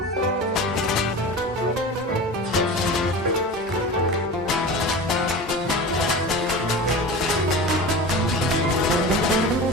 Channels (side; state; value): both; normal; correlation 0.32